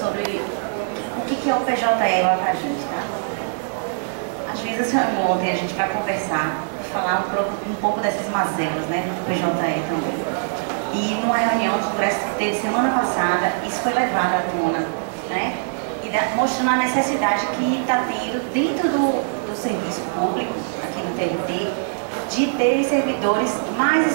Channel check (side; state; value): left; silent; digital silence